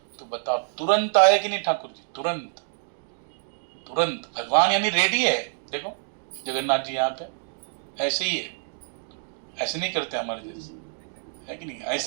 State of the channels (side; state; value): left; silent; digital silence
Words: तो बताओ तुरंत आए कि नहीं ठाकुर जी? तुरंत तुरंत। भगवान यानी रेडी है। देखो जगन्नाथ जी यहाँ पे ऐसे ही है, ऐसे नहीं करते हमारे जैसे, है कि नहीं?